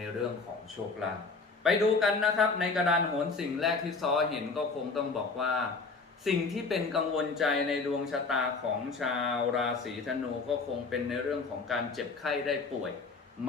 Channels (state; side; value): quieter; right; 4.2 dB